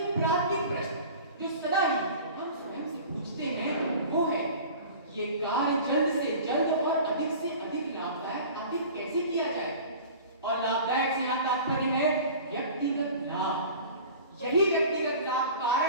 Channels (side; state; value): both; inverted; correlation -0.40